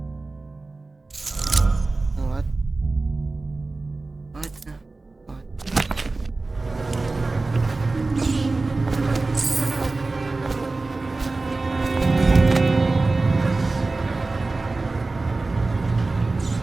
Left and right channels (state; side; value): quieter; left; 3.4 dB